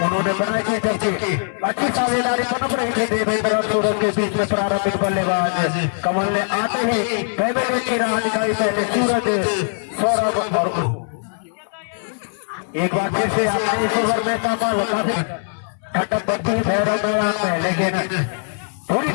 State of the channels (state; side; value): silent; right; 60 dB below the other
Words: उन्होंने बनाई थी, जबकि अच्छी साझेदारी पनप रही थी देवेंद्र और सूरज के बीच में। प्रारंभिक बल्लेबाज कमल ने आते ही पहले विकेट की राह निकाली, पहले सूरज, सौरभ और एक बार फिर से आपने इस ओवर में कमल काफी ठंडक बढ़ती हुई भैरव मैदान में, लेकिन पूरी